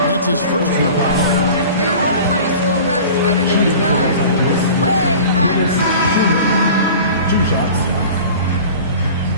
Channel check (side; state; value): both; inverted; correlation -0.40